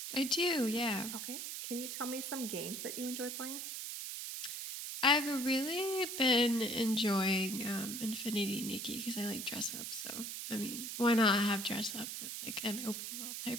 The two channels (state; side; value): noise; right; hiss, 5 dB below the sound